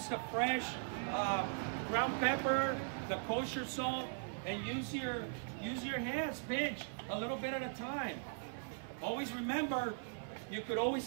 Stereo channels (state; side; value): silent; left; 51 dB below the other